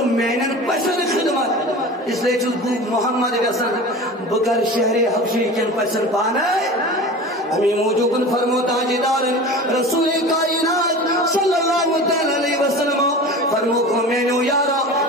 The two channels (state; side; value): normal; both; correlation 0.35